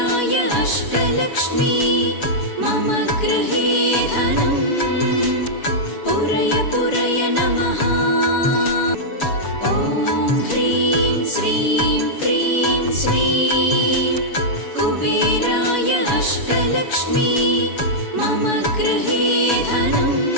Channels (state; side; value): late; right; 7.1 ms